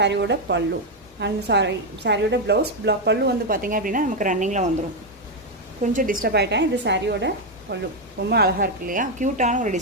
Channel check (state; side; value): normal; both; correlation 0.05